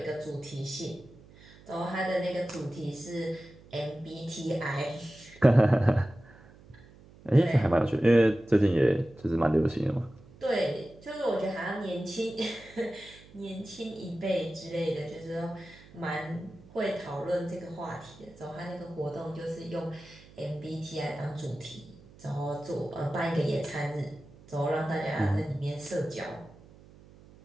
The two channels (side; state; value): right; noise; hum, 23 dB below the sound